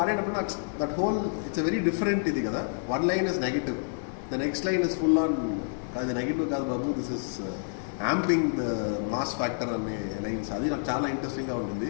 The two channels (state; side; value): silent; right; digital silence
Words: నాకు that whole it's a very different ఇది కదా. One line is negative, the next line is full on అది నెగిటివ్ కాదు బాబు, this is amping the mass factor అనే లైన్స్. అది నాకు చాలా ఇంట్రెస్టింగ్గా